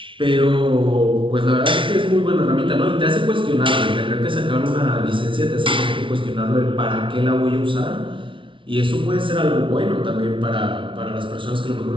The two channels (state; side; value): late; left; 0.25 ms